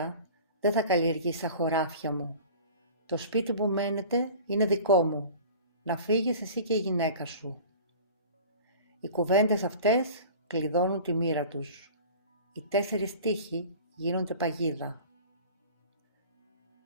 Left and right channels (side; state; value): both; inverted; correlation -0.41